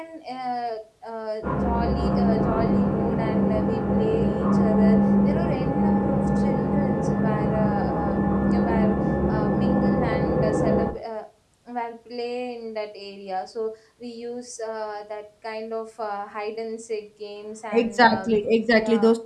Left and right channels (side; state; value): both; identical; correlation 1.00